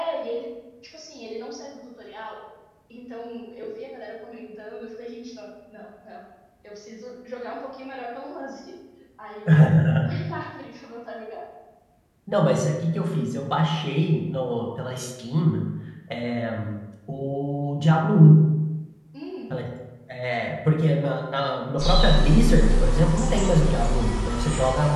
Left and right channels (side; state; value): both; identical; correlation 1.00